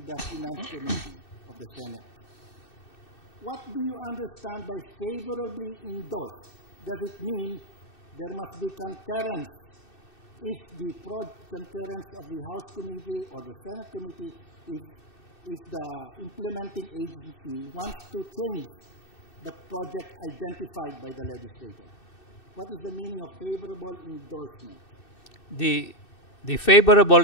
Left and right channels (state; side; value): late; right; 2.6 ms